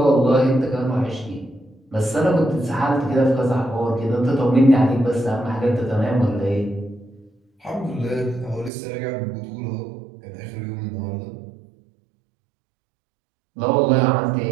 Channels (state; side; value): drops out; left; at 8.7 s